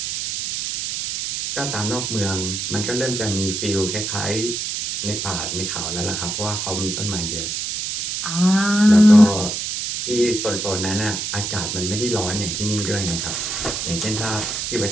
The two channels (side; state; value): right; noise; hiss, 3 dB below the sound